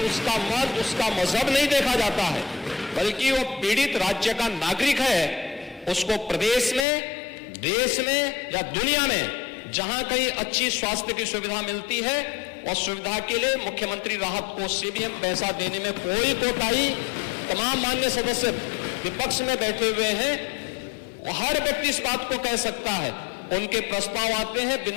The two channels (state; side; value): drops out; right; at 6.9 s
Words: उसका मत, उसका मजहब नहीं देखा जाता है, बल्कि वो पीड़ित राज्य का नागरिक है। उसको प्रदेश में, देश में या दुनिया में जहां कहीं अच्छी स्वास्थ्य की सुविधा मिलती है, और सुविधा के लिए मुख्यमंत्री राहत कोष से भी हम पैसा देने में कोई कोताही, तमाम मान्य सदस्य विपक्ष में बैठे हुए हैं, हर व्यक्ति इस बात को कह सकता है। उनके प्रस्ताव आते हैं